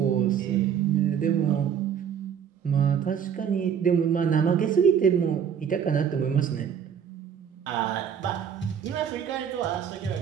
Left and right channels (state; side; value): quieter; left; 8.1 dB